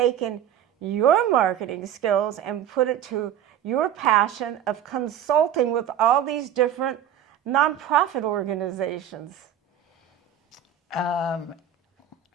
your marketing skills and put it to your passion of consulting with all these different nonprofit organizations.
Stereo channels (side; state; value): left; quieter; 9.8 dB